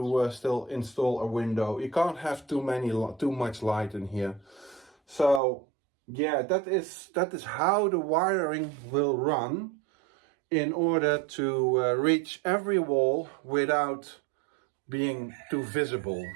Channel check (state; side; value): drops out; left; at 5.4 s